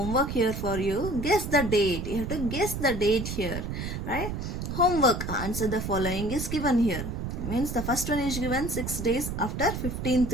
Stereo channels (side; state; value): right; noise; rumble, 5 dB below the sound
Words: here for you. Guess the date. You have to guess the date here, right? Homework, answer the following is given here. Means the first one is given 6 days after